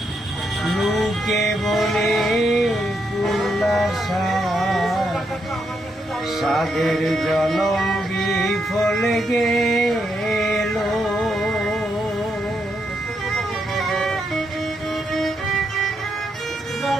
লোকে বলে কুল্লাসা সাদের জনম বিফল গেল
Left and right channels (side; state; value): both; normal; correlation 0.80